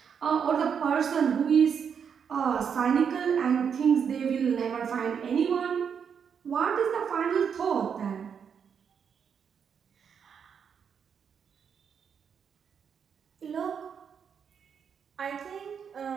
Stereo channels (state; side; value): quieter; left; 7.1 dB